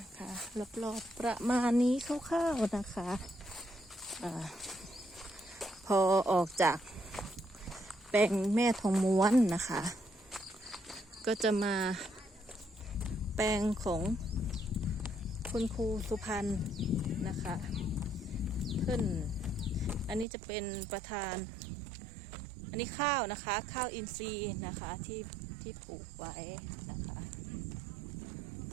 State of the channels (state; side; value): drops out; left; at 20.2 s